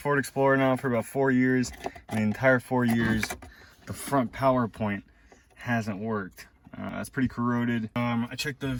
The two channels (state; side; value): identical; both; correlation 1.00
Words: Explorer now for about 4 years. And the entire 4 years, the front power point hasn't worked. It's pretty corroded. I checked the